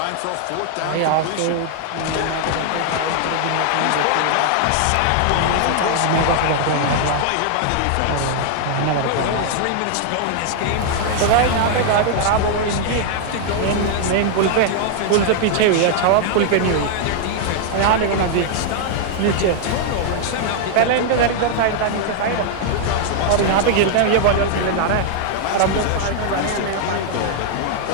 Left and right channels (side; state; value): both; different; correlation 0.00